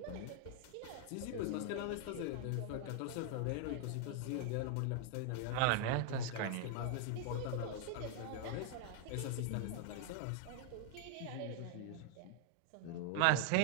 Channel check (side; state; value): both; different; correlation 0.00